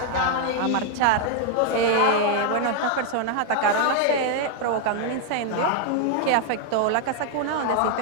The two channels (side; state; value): both; different; correlation 0.00